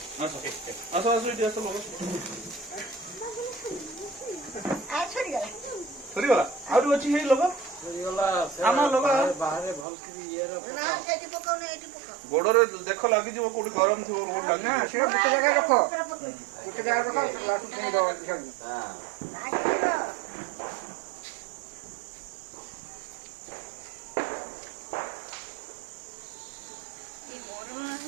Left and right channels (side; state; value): left; drops out; at 9.9 s